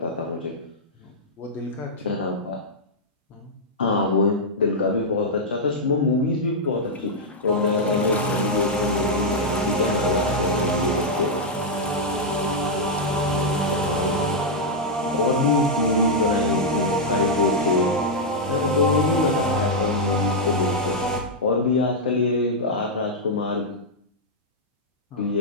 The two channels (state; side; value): normal; both; correlation -0.05